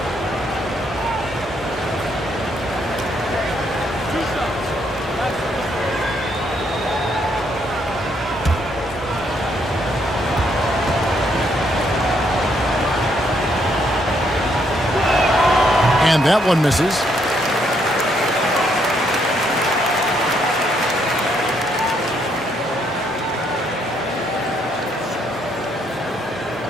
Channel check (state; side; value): normal; both; correlation 0.72